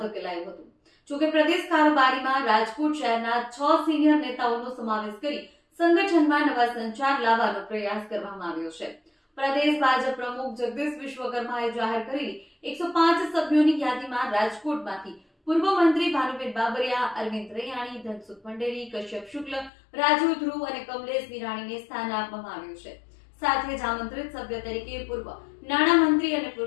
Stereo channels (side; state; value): right; drops out; at 19.7 s